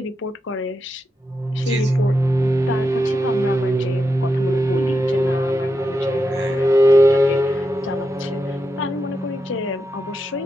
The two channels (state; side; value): normal; both; correlation 0.86